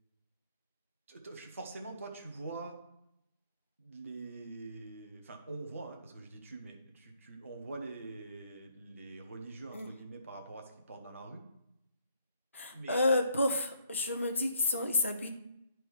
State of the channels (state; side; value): inverted; both; correlation -0.68